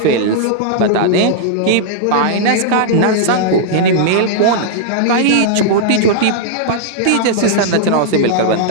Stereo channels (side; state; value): both; different; correlation -0.02